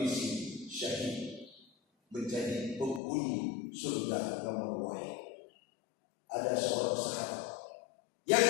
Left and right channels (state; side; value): drops out; right; at 3.0 s